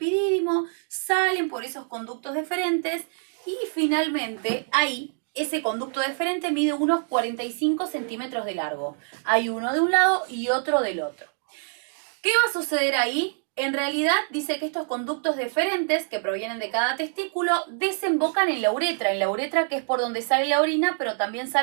salen por esos conductos deferentes y finalmente ahí ese conducto deferente mide unos 45 centímetros de largo. Hay uno de un lado y otro del otro. ¿Qué va a suceder ahí? En realidad dice que estos conductos deferentes que provienen de cada testículo desembocan en la uretra que es por donde sale la orina, pero también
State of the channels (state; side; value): silent; left; 60 dB below the other